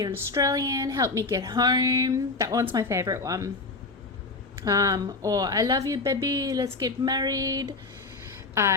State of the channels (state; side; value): quieter; right; 3.6 dB